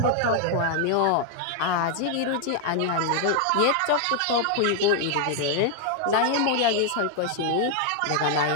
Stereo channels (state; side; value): different; both; correlation 0.00